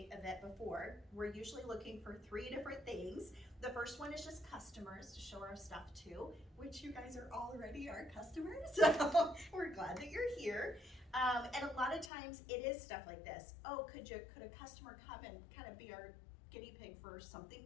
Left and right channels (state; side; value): drops out; right; at 12.1 s